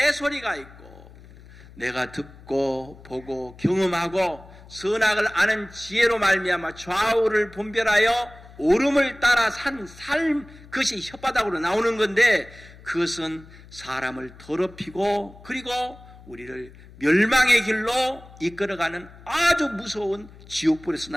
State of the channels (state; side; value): noise; left; hum, 21 dB below the sound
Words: 소리가 있고 내가 듣고 보고 경험하고 선악을 아는 지혜로 말미암아 좌우를 분별하여 옳음을 따라 산 삶, 그것이 혓바닥으로 나오는 건데 그것은 사람을 더럽히고 그리고 우리를 멸망의 길로 이끌어가는 아주 무서운 지옥불에서